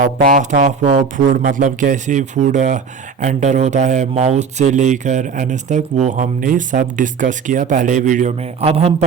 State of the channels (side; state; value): left; quieter; 5.8 dB